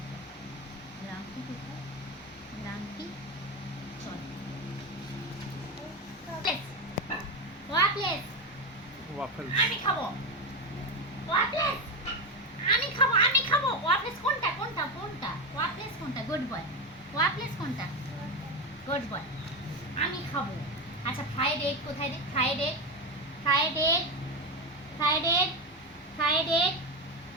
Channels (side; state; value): both; normal; correlation 0.14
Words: boy. গ্রাম্পি কোথায়? গ্রাম্পি, চল ওয়াফলেস, ওয়াফেল। আমি খাবো ওয়াফলেস, আমি খাবো, আমি খাবো। ওয়াফলেস কোনটা? কোনটা কোনটা? ওয়াফলেস কোনটা? Good boy. ওয়াফলেস কোনটা? Good boy. আমি খাবো। আচ্ছা ফ্রাইড এগ কোথায় রে? Fried egg, fried egg, fried egg, fried egg,